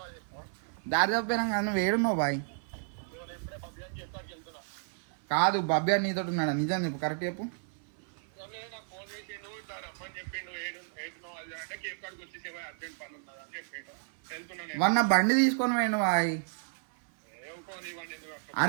దారి తప్పినా కానీ నువ్వు ఏడున్నావు బాయ్? కాదు బబ్బీ అని నీతో ఉన్నాడా? నిజం చెప్పు, కరెక్ట్ చెప్పు. వన్ నా బండి తీసుకొని పోయిండు బాయ్.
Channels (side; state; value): left; silent; 56 dB below the other